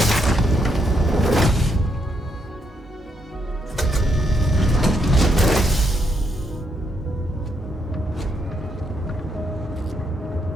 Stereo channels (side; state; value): both; normal; correlation 0.77